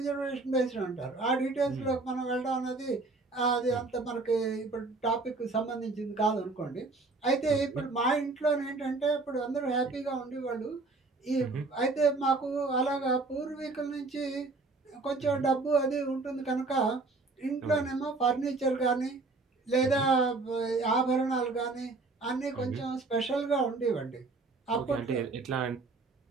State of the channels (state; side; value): quieter; left; 3.6 dB